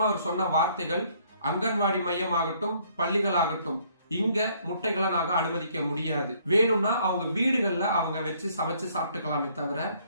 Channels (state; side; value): inverted; both; correlation -0.64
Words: அவர் சொன்ன வார்த்தைகள், அங்கன்வாடி மையம் ஆகட்டும், பள்ளிகள் ஆகட்டும், இங்க முட்டைகளை நாங்க அனுமதிக்க முடியாது. வேணும்னா அவங்க வீடுகள்ல அவங்க வச்சு சமைச்சு சாப்பிட்டுக்கலாமே தவிர